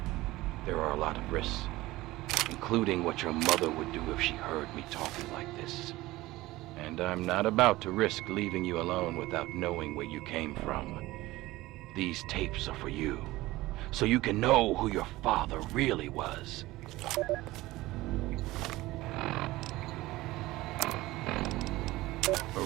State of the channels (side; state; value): left; quieter; 18.4 dB